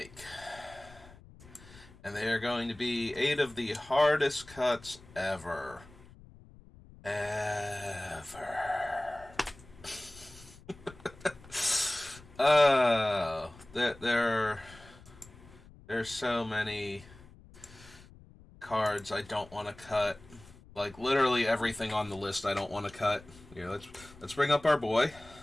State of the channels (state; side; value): noise; left; rumble, 22 dB below the sound